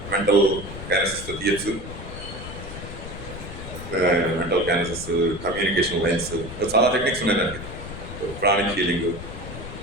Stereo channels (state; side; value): noise; left; rumble, 10 dB below the sound